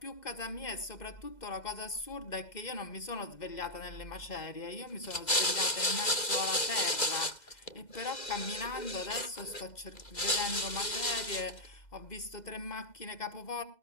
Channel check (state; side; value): late; right; 2.0 ms